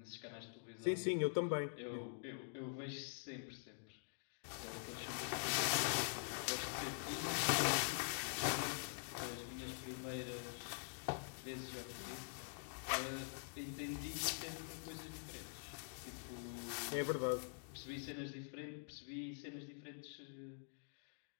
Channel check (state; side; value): silent; right; digital silence